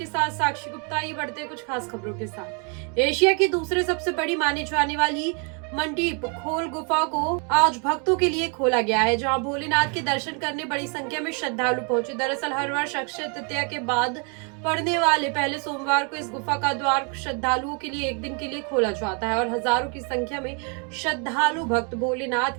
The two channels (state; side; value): quieter; left; 37.1 dB